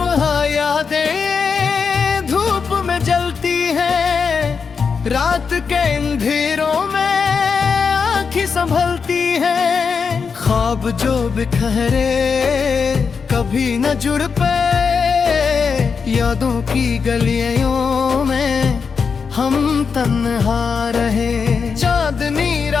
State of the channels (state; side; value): quieter; right; 5.7 dB